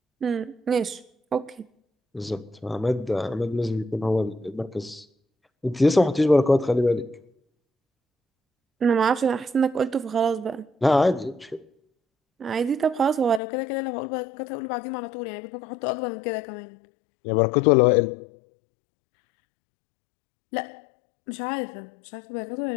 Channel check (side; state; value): right; drops out; at 13.4 s